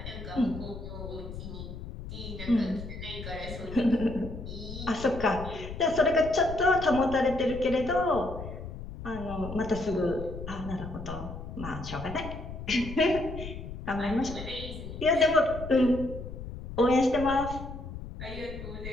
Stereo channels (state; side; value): noise; left; rumble, 10 dB below the sound